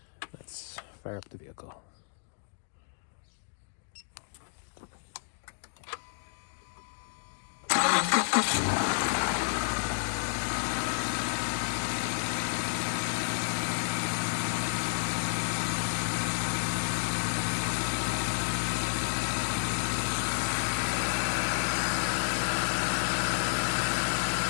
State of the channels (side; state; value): right; silent; digital silence